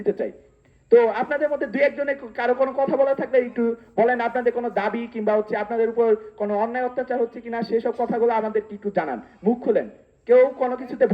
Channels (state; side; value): identical; both; correlation 1.00